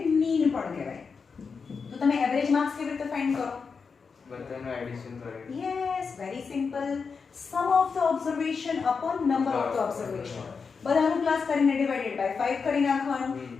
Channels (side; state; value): right; quieter; 5.3 dB